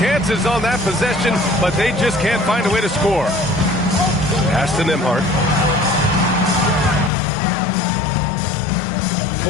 on that possession, but they just can't find a way to score. Pass to Nembhard.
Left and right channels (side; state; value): right; drops out; at 7.1 s